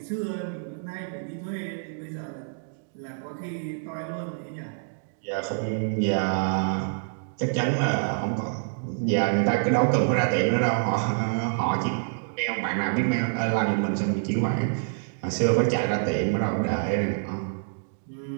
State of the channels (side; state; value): left; silent; digital silence